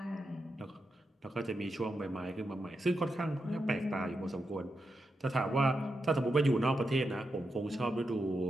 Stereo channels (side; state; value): both; normal; correlation 0.87